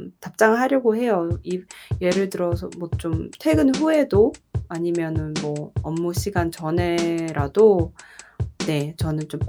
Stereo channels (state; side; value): identical; both; correlation 1.00